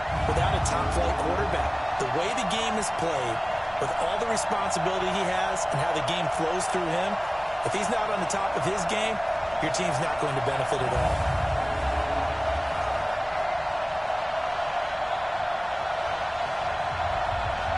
without a top-flight quarterback. The way the game is played, with all the responsibility he has and how the game flows through him, if he's not on the top of his game, your team's not going to benefit at all.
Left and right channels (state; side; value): identical; both; correlation 1.00